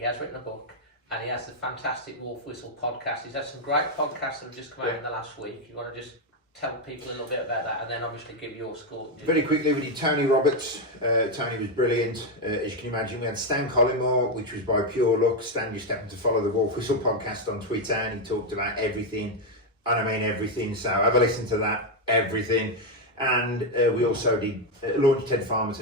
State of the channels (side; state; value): both; normal; correlation 0.04